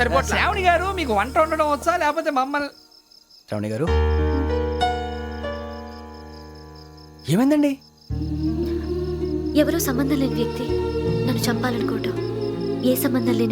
శ్రావణి గారు, మీకు వంట వండడం వచ్చా లేకపోతే మమ్మల్ని? శ్రావణి గారు ఏమైందండి? ఎవరో సంబంధం లేని వ్యక్తి నన్ను చంపాలనుకోవటం, ఏ సంబంధం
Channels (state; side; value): identical; both; correlation 1.00